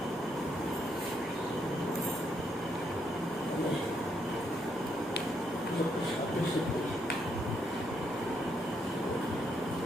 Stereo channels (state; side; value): noise; left; rumble, 25 dB below the sound